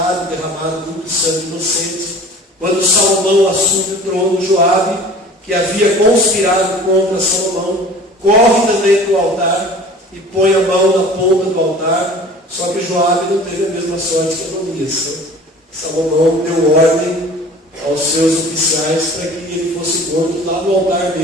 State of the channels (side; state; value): both; normal; correlation 0.44